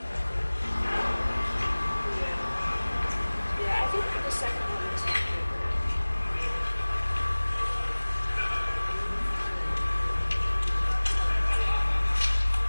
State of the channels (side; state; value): both; inverted; correlation -1.00